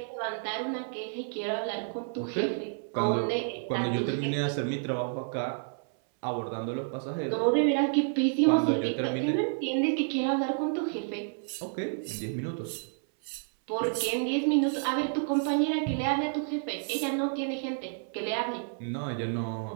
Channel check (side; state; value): left; silent; 58 dB below the other